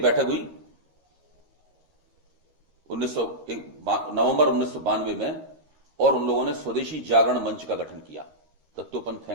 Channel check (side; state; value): left; late; 13 ms